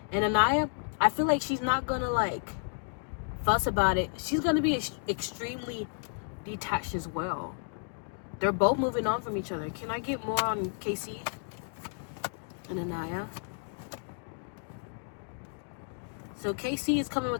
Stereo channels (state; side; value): silent; right; 57 dB below the other